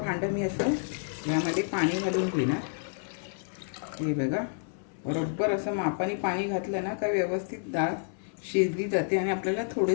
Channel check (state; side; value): silent; right; 58 dB below the other